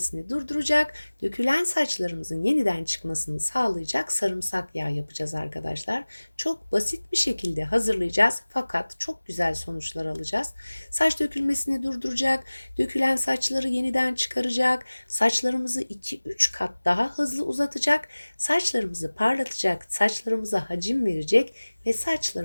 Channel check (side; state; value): both; inverted; correlation -1.00